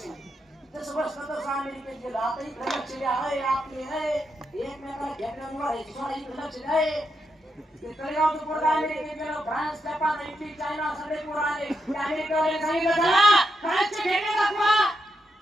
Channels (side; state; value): both; normal; correlation 0.84